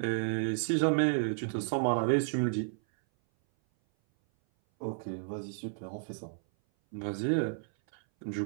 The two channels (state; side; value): silent; left; 56 dB below the other